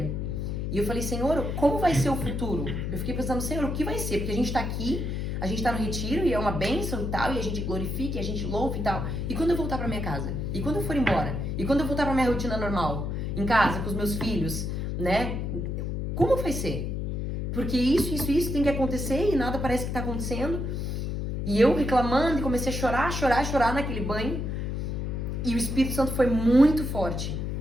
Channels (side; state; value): left; noise; hum, 2 dB below the sound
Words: E eu falei, Senhor, como vai ser o futuro? Eu fiquei pensando, Senhor, o que vai ser? Porque a gente tá aqui, a gente tá no retiro e é uma bênção e tal, e a gente glorifica, e a gente louva e tal. E quando eu voltar pra minha casa? E quando eu for embora? E quando eu voltar pra minha rotina normal? Em casa, com os meus filhos, né? Como vai ser? Porque isso tem que acontecer e nada parece que tá acontecendo. E eu reclamando e comecei a chorar naquele banho. E o Espírito Santo foi muito forte.